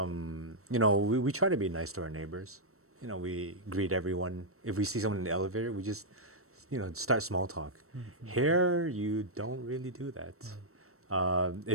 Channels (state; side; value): late; left; 0.63 ms